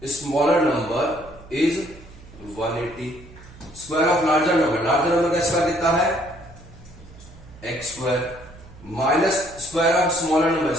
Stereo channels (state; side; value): noise; right; hum, 20 dB below the sound